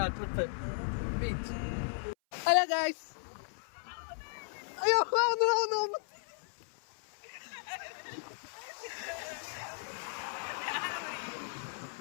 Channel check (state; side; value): silent; right; 54 dB below the other